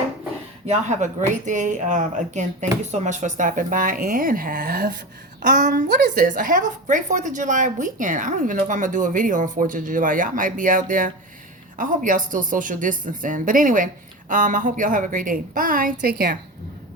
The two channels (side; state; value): both; normal; correlation 0.25